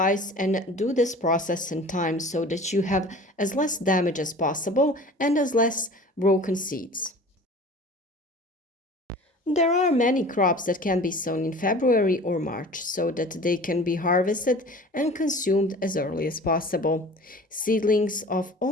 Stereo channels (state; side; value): normal; both; correlation 0.42